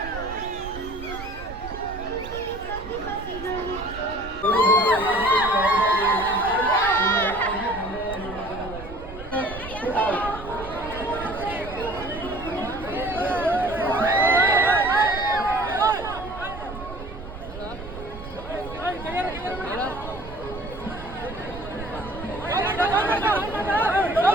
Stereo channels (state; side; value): noise; right; rumble, 12 dB below the sound